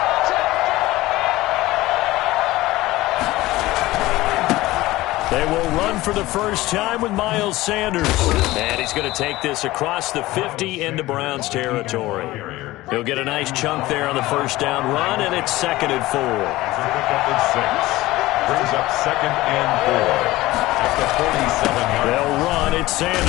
They will run for the first time with Miles Sanders. And he's going to take this across the 50 into Browns territory. He'll get a nice chunk there on the first down run, and it's 2nd and 4. Brings up 2nd and 4 at the 47-yard line. They'll run. It's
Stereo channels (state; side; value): quieter; right; 18.1 dB